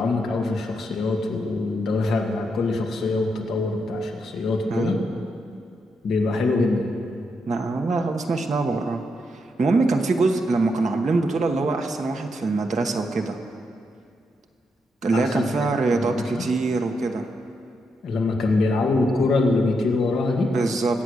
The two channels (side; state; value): both; normal; correlation 0.81